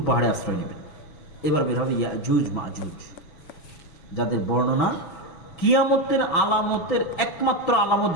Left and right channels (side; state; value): right; late; 6.1 ms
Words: পাহাড়ে আশ্রয় নেবেন। এবার বের হবে ইয়াজুজ মাজুজ, যাদের বর্ণনা কিয়ামতের আলামতের একমাত্র আলামত,